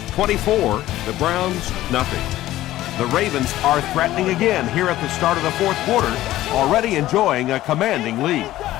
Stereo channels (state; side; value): quieter; right; 15.0 dB